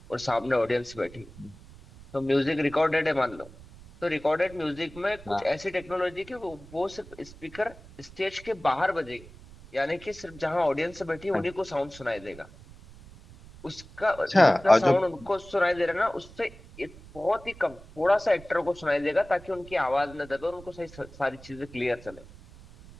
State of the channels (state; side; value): noise; right; rumble, 20 dB below the sound